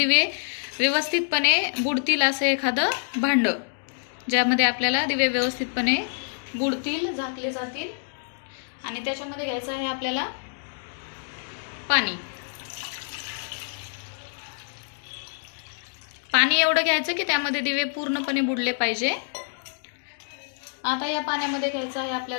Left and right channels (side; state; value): right; silent; digital silence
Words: व्यवस्थितपणे बुडतील असे एखादं भांड, ज्यामध्ये आपल्याला दिवे व्यवस्थितपणे बुडतील, झाकले जातील। आणि त्याच्यामध्ये घ्यायचं आहे आपल्याला पाणी एवढं घ्यायचं की त्यामध्ये दिवे पूर्णपणे बुडले पाहिजे। आता या पाण्यामध्ये घ्यायचं आहे